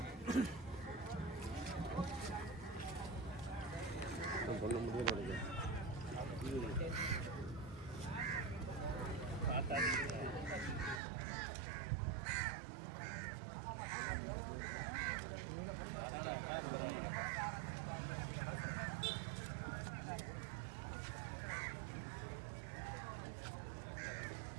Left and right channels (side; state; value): left; drops out; at 11.0 s